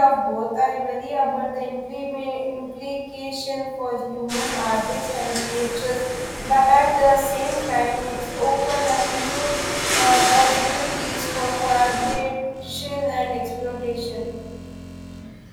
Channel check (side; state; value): both; identical; correlation 1.00